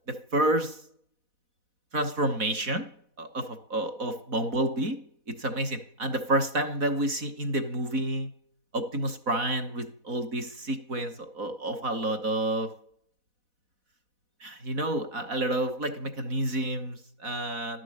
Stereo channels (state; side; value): late; left; 4.1 ms